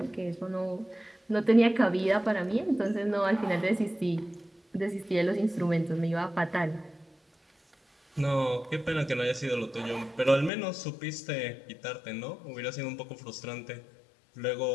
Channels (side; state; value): right; drops out; at 10.5 s